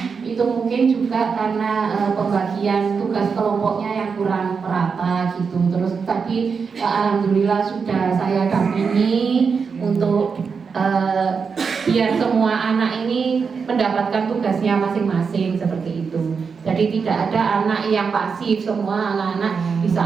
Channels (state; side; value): quieter; left; 5.6 dB